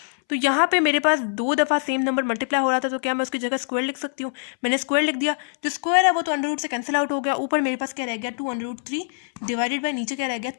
तो यहाँ पे मेरे पास 2 दफ़ा सेम नंबर मल्टीप्लाई हो रहा था, तो क्या मैं उसकी जगह स्क्वायर लिख सकती हूँ, मैंने स्क्वायर लिख दिया, जो स्क्वायर है वो तो अंडर से कैंसिल आउट हो गया, ऊपर मेरे पास क्या रह गया 2√3 डिवाइडेड बाय नीचे क्या रह गया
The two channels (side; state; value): right; silent; 63 dB below the other